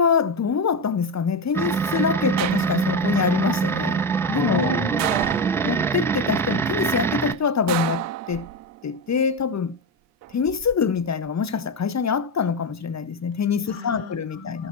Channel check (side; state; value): both; normal; correlation 0.14